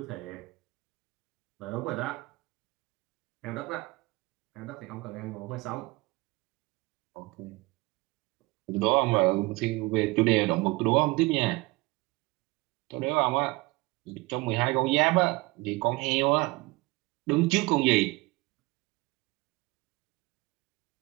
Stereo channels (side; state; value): left; quieter; 22.8 dB